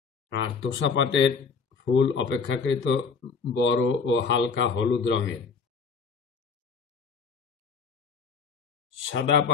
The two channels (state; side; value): quieter; right; 5.3 dB